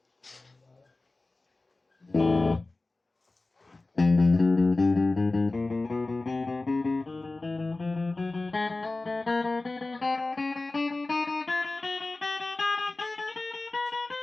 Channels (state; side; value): quieter; right; 3.2 dB